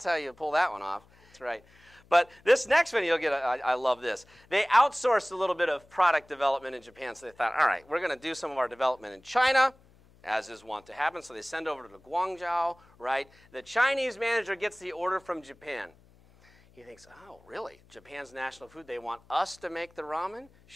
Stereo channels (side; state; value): left; noise; hum, 29 dB below the sound